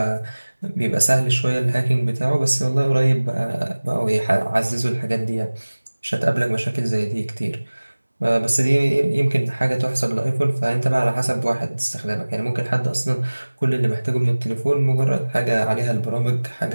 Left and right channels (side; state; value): both; inverted; correlation -1.00